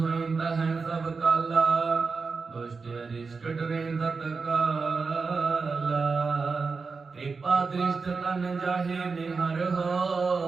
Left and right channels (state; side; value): quieter; left; 4.6 dB